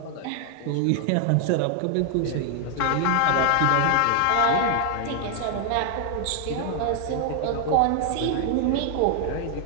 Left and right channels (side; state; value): both; different; correlation 0.00